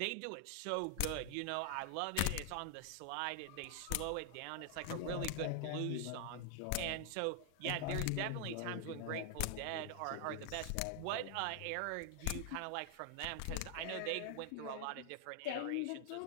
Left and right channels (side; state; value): both; different; correlation 0.00